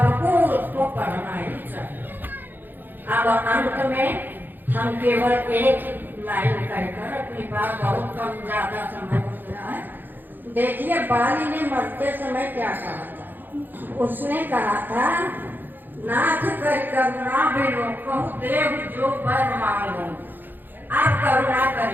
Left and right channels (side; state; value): left; late; 0.090 ms